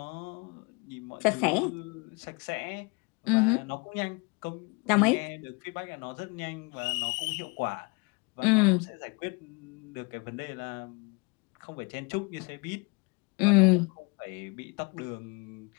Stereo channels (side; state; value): right; quieter; 30.0 dB